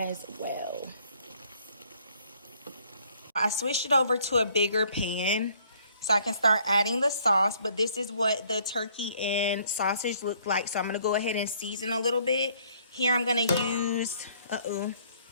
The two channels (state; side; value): inverted; both; correlation -0.62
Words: well. I switched it over to a bigger pan so I can start adding the sauce, but this is what the turkey and sausage look like. So I'm gonna go ahead and season a little bit. Here I'm gonna use,